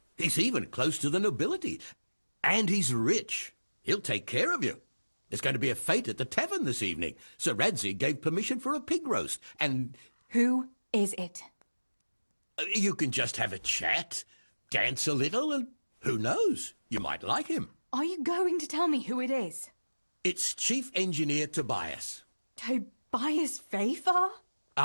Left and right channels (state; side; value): inverted; both; correlation -1.00